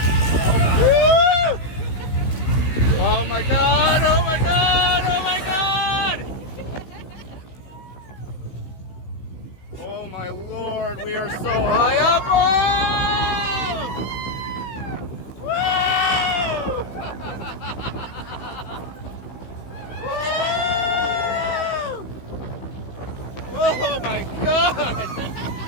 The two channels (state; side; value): late; right; 16 ms